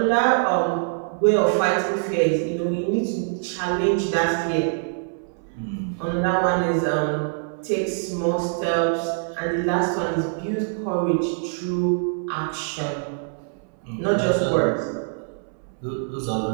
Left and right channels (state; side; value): silent; left; 63 dB below the other